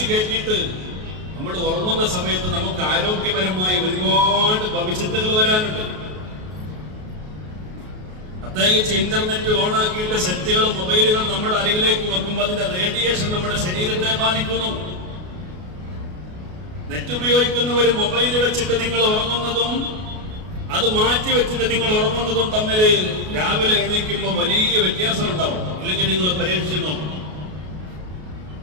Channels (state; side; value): late; left; 33 ms